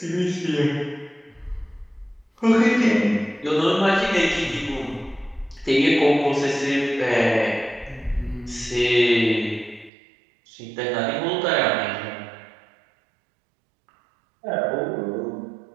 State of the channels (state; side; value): drops out; left; at 9.9 s